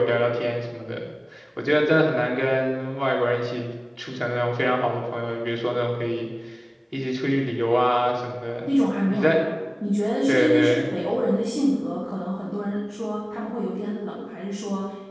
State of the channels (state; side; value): identical; both; correlation 1.00